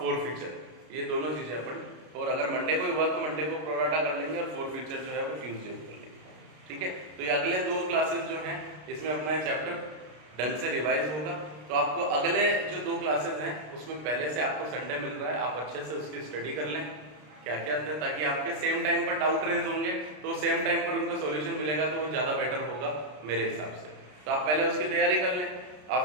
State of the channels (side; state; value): left; late; 33 ms